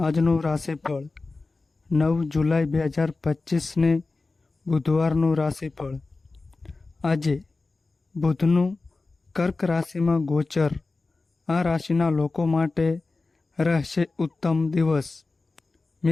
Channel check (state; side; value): quieter; right; 3.6 dB